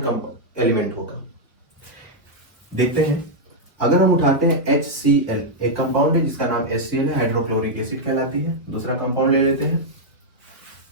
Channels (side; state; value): both; normal; correlation -0.03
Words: एलिमेंट होगा? देखते हैं। अगर हम उठाते हैं HCl, एक कंपाउंड है जिसका नाम HCl है, हाइड्रोक्लोरिक एसिड कहलाती है। दूसरा कंपाउंड ले लेते हैं